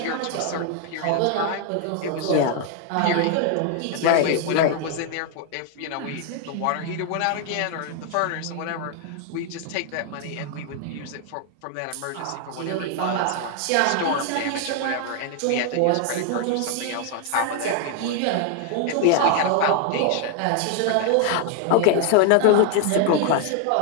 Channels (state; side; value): different; both; correlation 0.00